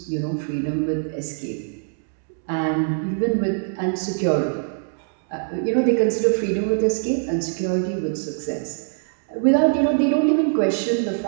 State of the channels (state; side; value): silent; left; digital silence